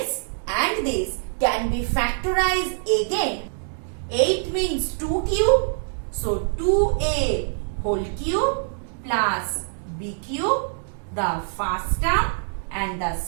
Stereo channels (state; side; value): silent; left; digital silence